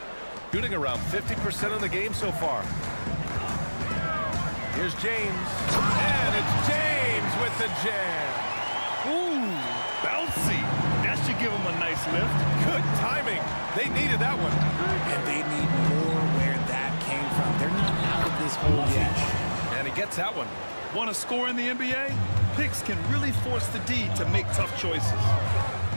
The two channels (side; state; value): both; inverted; correlation -1.00